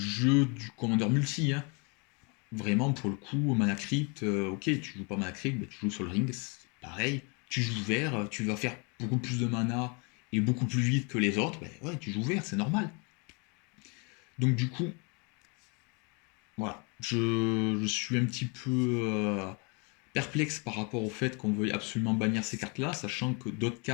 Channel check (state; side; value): quieter; right; 32.6 dB